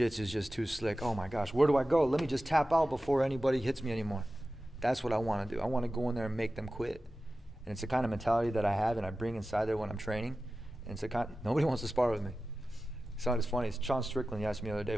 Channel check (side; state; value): both; normal; correlation 0.94